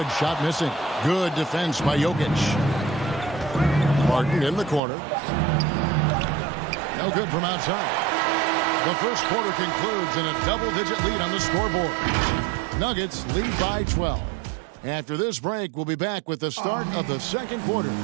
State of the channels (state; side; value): drops out; left; at 4.8 s